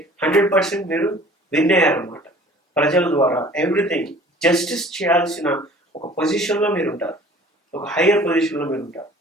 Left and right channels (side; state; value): both; normal; correlation 0.49